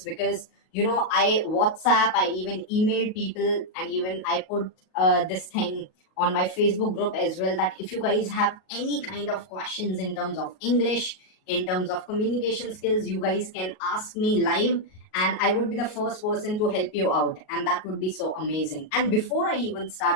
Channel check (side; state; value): right; late; 38 ms